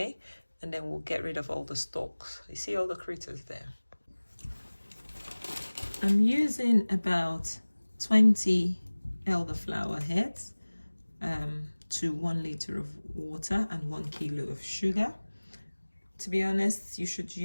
And then we'll get rid of all the stalks. You see all the critters there? I'm using about 20 elderflower heads to 1 liter of water and 1 kilo of sugar. To be honest, you should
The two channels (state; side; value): inverted; both; correlation -1.00